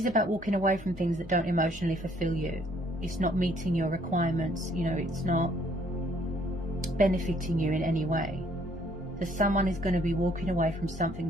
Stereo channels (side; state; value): both; normal; correlation 0.64